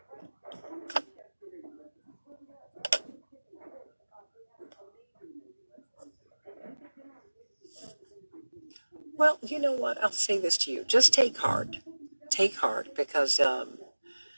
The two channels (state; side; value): inverted; both; correlation -1.00